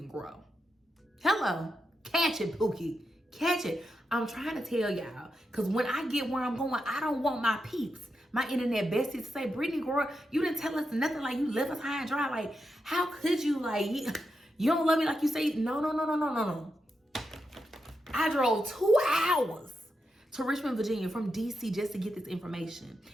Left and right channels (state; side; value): normal; both; correlation 0.86